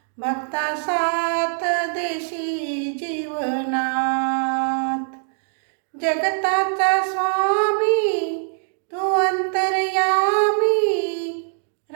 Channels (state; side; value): silent; left; digital silence